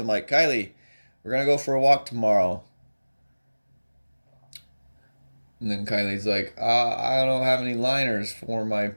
like, "Kylie, we're going to go for a walk tomorrow." And then Kylie's like, "I don't have any liners for my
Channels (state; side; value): inverted; both; correlation -1.00